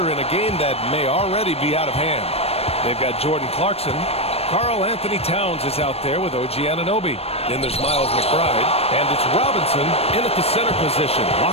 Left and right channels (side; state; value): right; late; 0.29 ms